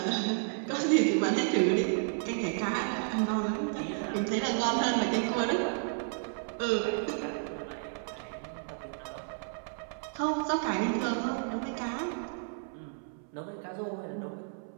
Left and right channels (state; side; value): silent; left; 56 dB below the other